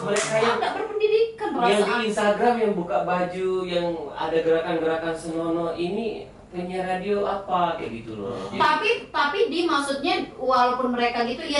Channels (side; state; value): both; identical; correlation 1.00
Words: mereka yang enggak berpendidikan yang di Instagram yang buka baju yang ada gerakan-gerakan senonoh ini penyiar radio apa kayak gitu loh. Tapi di maksudnya walaupun mereka gitu ya